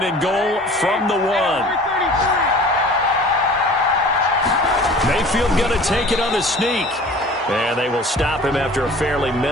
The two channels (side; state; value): both; normal; correlation 0.45